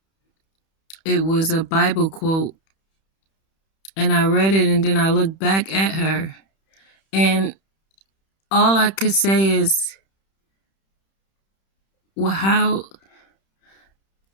It was a Bible quote, and I read it, and then I looked back at her, and all I could say is, well, how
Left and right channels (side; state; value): right; late; 31 ms